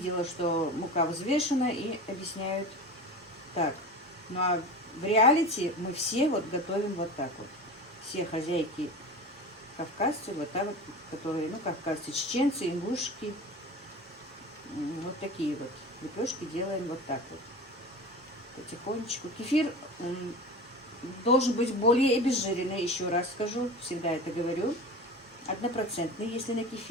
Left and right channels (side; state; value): both; normal; correlation 0.32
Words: что мука взвешена и объясняют так. Ну а в реалити мы все вот готовим вот так вот. Все хозяйки кавказцы, вот там, которые, ну, кавказцы, чеченцы, ингушки. Вот такие вот лепешки делаем вот так вот. Потихонечку. Кефир должен быть более обезжиренный, еще раз скажу, всегда это говорю. 1%, если на